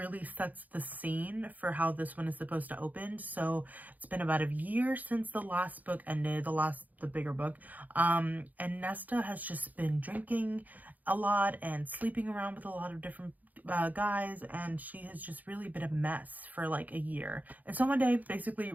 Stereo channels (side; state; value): left; late; 0.080 ms